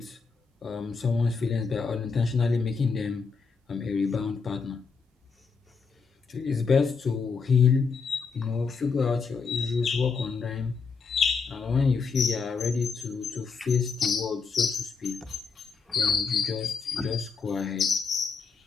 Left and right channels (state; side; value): quieter; right; 5.1 dB